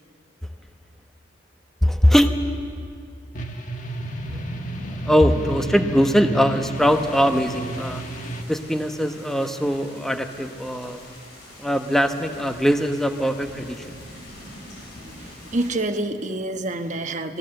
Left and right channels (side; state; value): both; normal; correlation 0.88